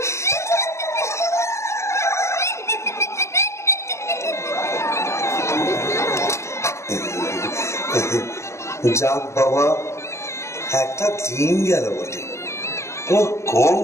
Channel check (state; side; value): late; right; 0.13 ms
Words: যাক বাবা, একটা দিন গেল বটে। ও কম